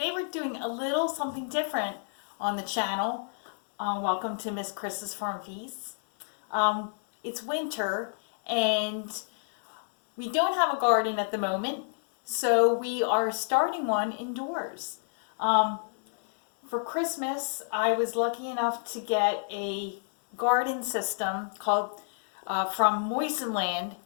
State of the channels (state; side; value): silent; right; digital silence